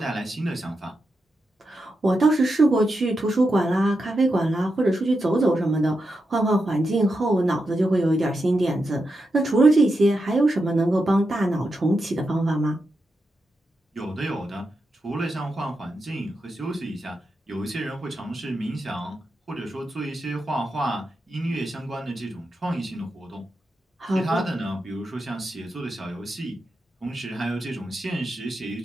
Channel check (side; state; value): both; normal; correlation 0.87